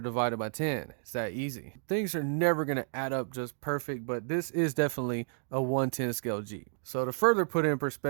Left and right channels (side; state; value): left; silent; digital silence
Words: it by 10. It's that easy. Things are never going to add up just perfect, but this is definitely a 110 scale Jeep. So to further put it in